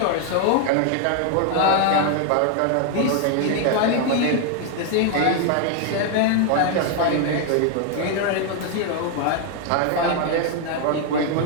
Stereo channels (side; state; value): both; different; correlation 0.01